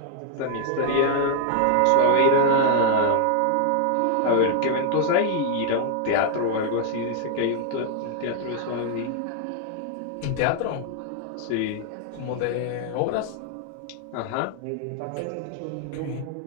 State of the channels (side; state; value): both; different; correlation 0.00